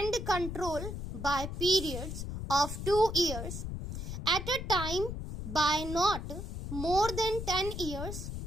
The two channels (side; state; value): left; noise; rumble, 6 dB below the sound